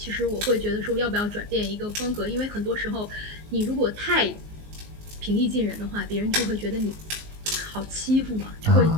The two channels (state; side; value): late; left; 19 ms